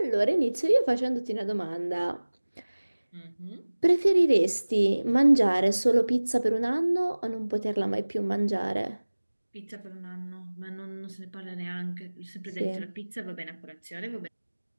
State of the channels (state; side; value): inverted; both; correlation -1.00